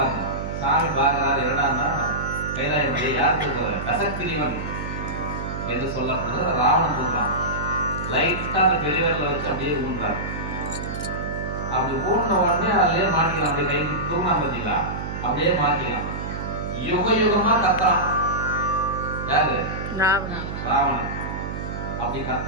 சாமி பார்க்கிறாரு, என்னடான்னா கைலாய மலையை யார் தூக்குறாரு? கசக்கிரிவன் என்று சொல்லப்படுறது ராவணன் தூக்கலாம். லைட்டா அந்த பெரியவர்களை வச்சு அப்படியே ஊன்றாரு. அப்படி ஊன்ற உடனே அதுலயே மாட்டிக்கலாம். அப்படியே கை தூங்கினா பார்த்தீங்களா, அப்படியே மாட்டிக்கலாம். யுக யுகமா கத்துறான். யாரு? ராவணன். அப்படி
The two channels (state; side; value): noise; right; hum, 6 dB below the sound